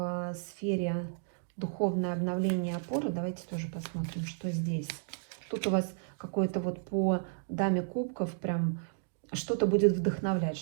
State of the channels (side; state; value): left; silent; digital silence